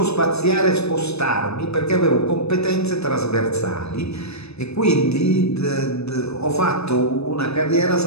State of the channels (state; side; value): late; right; 0.79 ms